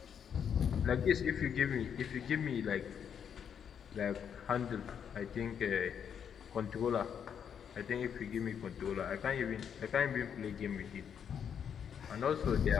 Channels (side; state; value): right; quieter; 8.0 dB